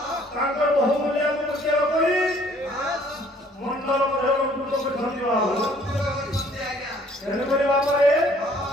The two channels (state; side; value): normal; both; correlation 0.59